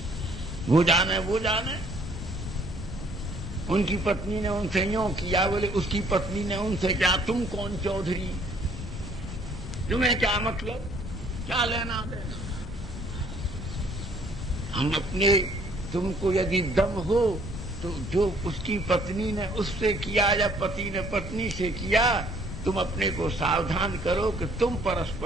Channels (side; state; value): both; normal; correlation 0.61